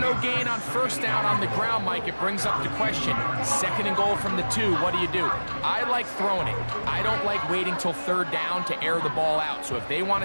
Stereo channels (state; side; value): inverted; both; correlation -1.00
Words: gain on 1st down on the ground, Mike, it brings up the question. 2nd and goal from the 2, what do? I like throwing it. I don't like waiting till 3rd down to air the ball out. So if they want